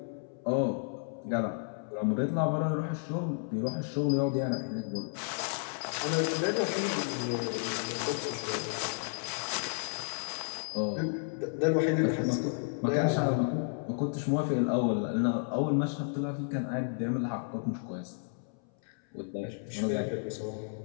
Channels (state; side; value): silent; right; 56 dB below the other